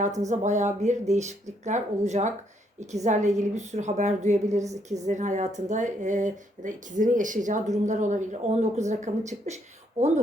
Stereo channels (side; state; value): both; normal; correlation 0.72